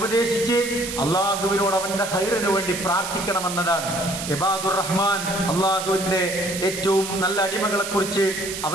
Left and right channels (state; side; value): noise; right; hiss, 7 dB below the sound